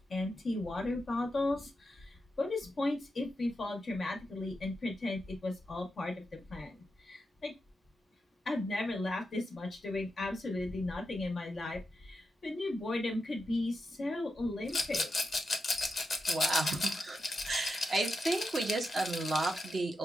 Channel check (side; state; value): both; normal; correlation 0.87